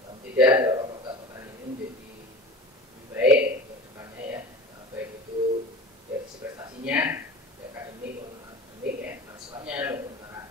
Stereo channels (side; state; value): both; normal; correlation 0.36